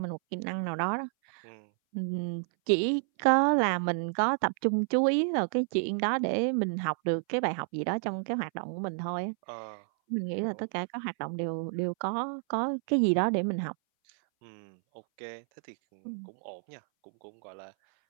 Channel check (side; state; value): left; silent; 58 dB below the other